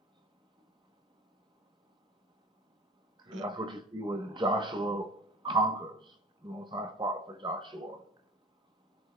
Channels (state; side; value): normal; both; correlation 0.42